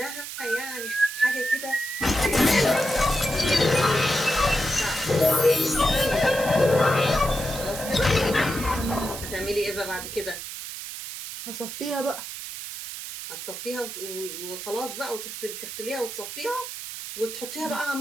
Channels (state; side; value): noise; right; hiss, 8 dB below the sound